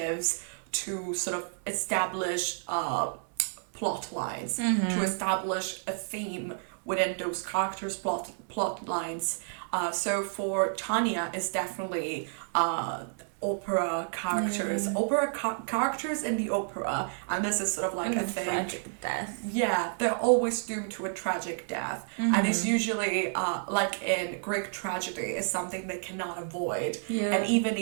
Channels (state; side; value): silent; left; digital silence